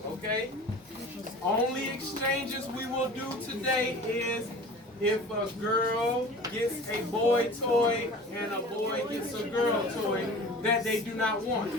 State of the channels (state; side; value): normal; both; correlation 0.40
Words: okay? Only exchanges we will do today is if a girl gets a boy toy and a boy gets a girl toy that they do not want.